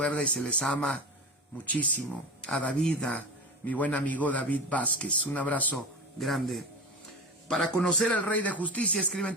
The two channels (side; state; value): both; normal; correlation 0.27